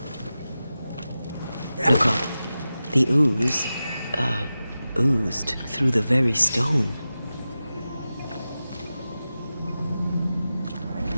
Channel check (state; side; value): inverted; both; correlation -0.94